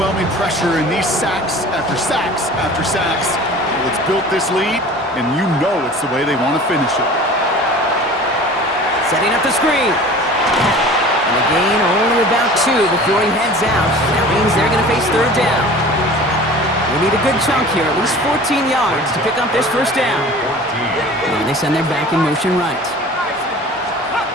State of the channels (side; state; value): both; normal; correlation 0.42